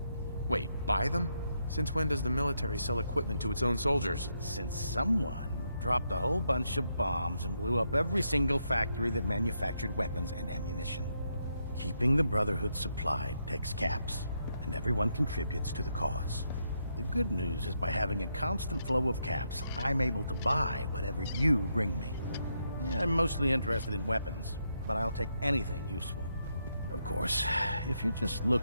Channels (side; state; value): both; inverted; correlation -0.80